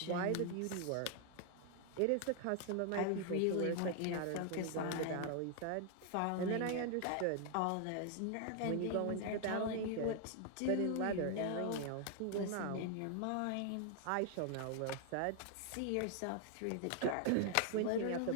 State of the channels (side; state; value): both; different; correlation 0.00